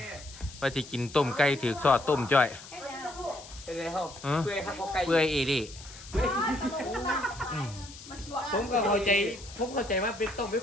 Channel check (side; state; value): left; noise; hiss, 16 dB below the sound